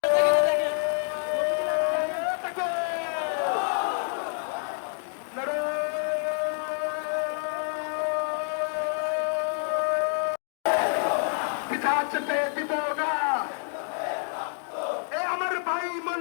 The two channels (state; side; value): silent; right; 60 dB below the other